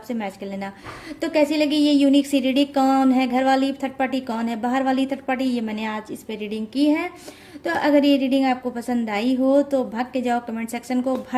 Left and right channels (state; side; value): identical; both; correlation 1.00